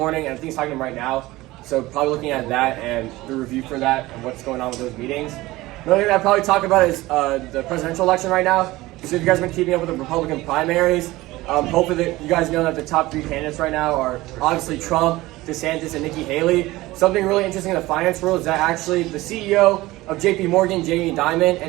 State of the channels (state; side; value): quieter; left; 18.9 dB